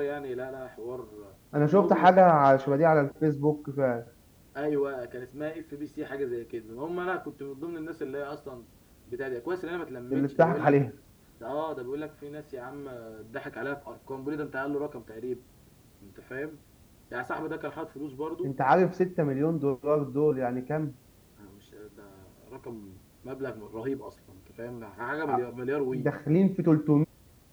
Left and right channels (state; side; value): identical; both; correlation 1.00